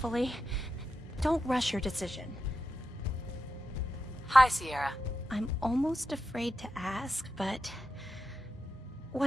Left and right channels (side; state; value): both; normal; correlation 0.88